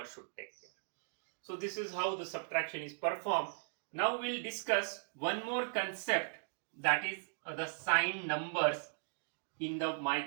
should take care. So this is how the subtraction is performed. Now we'll discuss one more concept, that is the signed numbers in the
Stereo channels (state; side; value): silent; left; digital silence